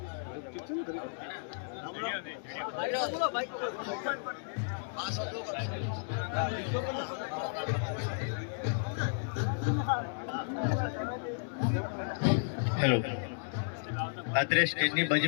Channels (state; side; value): silent; right; digital silence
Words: હેલો, અત્યારે સ્ટેજની